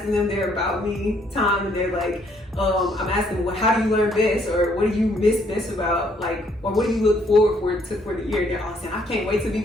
them their about me time, and they're like, I'm asking them, how do you learn best, or what do you miss best about, or what do you look forward to for the year? They're all saying, I can't wait to be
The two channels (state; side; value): normal; both; correlation 0.67